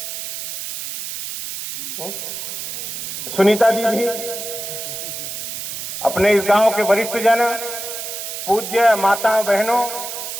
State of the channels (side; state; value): right; noise; hiss, 6 dB below the sound